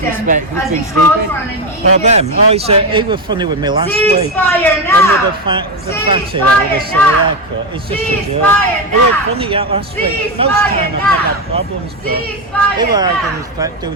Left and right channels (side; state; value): both; normal; correlation 0.10